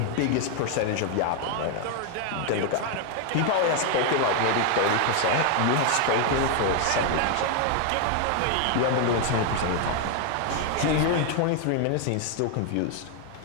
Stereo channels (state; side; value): different; both; correlation 0.01